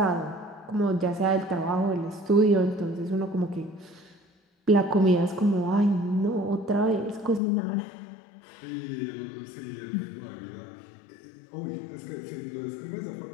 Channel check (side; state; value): right; drops out; at 7.4 s